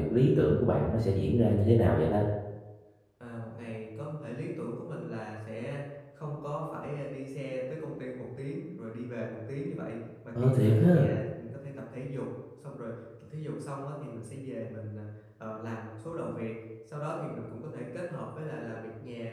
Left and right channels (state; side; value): identical; both; correlation 1.00